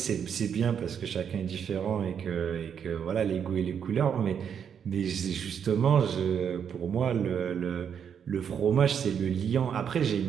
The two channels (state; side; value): quieter; left; 7.8 dB